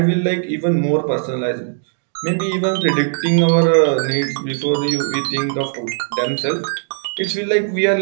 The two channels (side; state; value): left; silent; digital silence